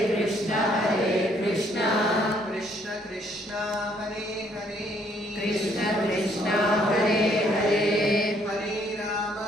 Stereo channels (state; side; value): normal; both; correlation 0.66